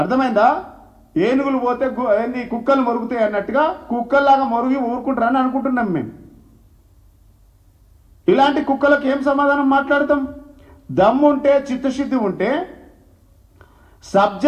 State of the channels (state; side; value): identical; both; correlation 1.00